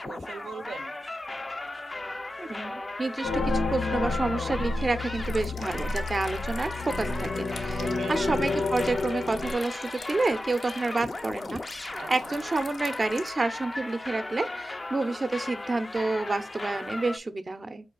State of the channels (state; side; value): normal; both; correlation 0.92